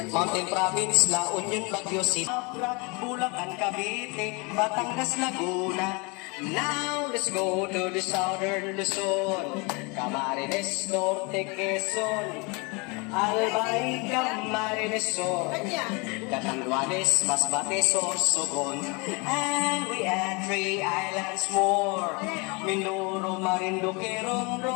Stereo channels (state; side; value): quieter; right; 29.5 dB